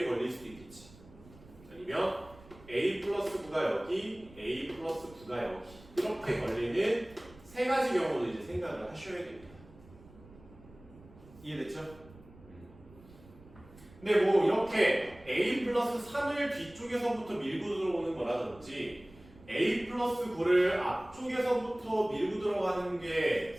걸릴 수도 있겠지. 아니면 a 플러스 9가 여기, a 플러스 9가 여기 이렇게 걸리는 세 가지 경우도 이제 생각을 하셔야 됩니다. 이해됐죠? 근데 뭐 이렇게 a 플러스 3을 뒤쪽에서부터 밀고 들어오는 거라든지 a 플러스 9를 앞쪽에서부터 밀고 들어가는 게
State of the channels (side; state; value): right; noise; rumble, 22 dB below the sound